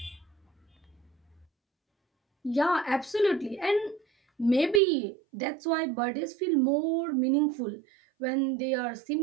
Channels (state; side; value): drops out; left; at 4.8 s